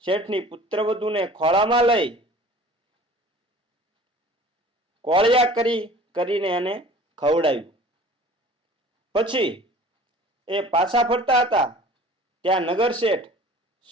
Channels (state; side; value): normal; both; correlation 0.46